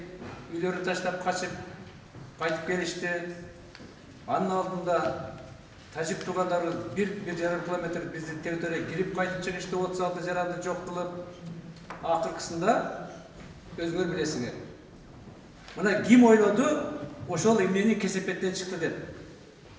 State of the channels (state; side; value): identical; both; correlation 1.00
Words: үйлөрүн таштап качып кайтып келишти. Анын алдында тажик туугандары 1,5 километр биздин территорияга кирип кайтып чыгышты, 36 жаранды жок кылып. Акыркысында өзүңөр билесиңер. Мына ким ойлоду, ошол эмнени кесепеттен чыкты деп.